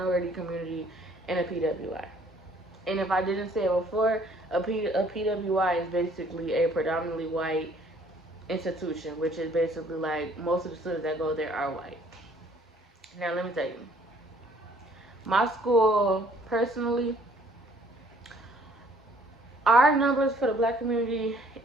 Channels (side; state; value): both; normal; correlation 0.59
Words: community in a PWI. And if I didn't say it before, a PWI is basically a predominantly white institution, which is basically like most of the students that go there are white. Now let me tell you, my school personally, our numbers for the black community